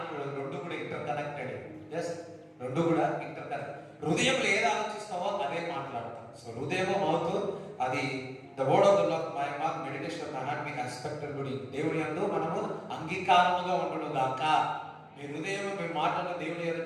రెండు కూడా ఇంటర్ కనెక్టెడ్. రెండు కూడా ఇంటర్ కనెక్ట్. హృదయంలో ఏది ఆలోచిస్తావో అదే మాట్లాడతాం. సో హృదయము మౌత్ అది the word of the lord my mouth meditation of my heart be accepted. దేవుని యందు మనము అంగీకారముగా ఉండును గాక. మీ హృదయం మీ మాటలు దేవుని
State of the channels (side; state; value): both; identical; correlation 1.00